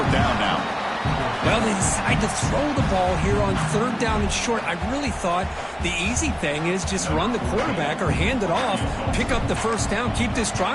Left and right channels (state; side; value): identical; both; correlation 1.00